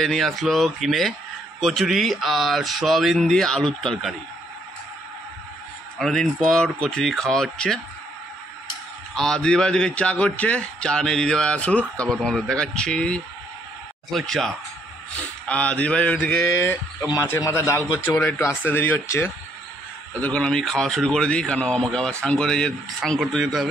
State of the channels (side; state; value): both; normal; correlation 0.70